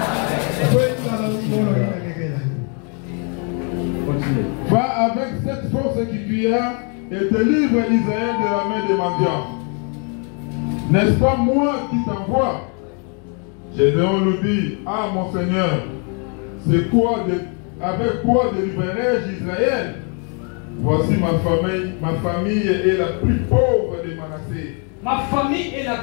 Continue. Va avec cette force que tu as et te livre Israël de la main des mendiants. N'est-ce pas moi qui t'envoie? Gédéon lui dit, ah mon Seigneur, c'est quoi avec quoi délivrerai-je Israël? Voici ma famille est la plus pauvre de Manassé. Ma famille est la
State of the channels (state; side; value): quieter; right; 39.0 dB